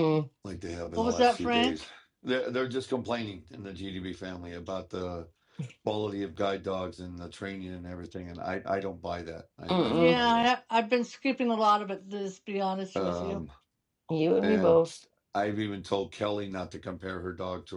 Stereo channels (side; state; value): both; identical; correlation 1.00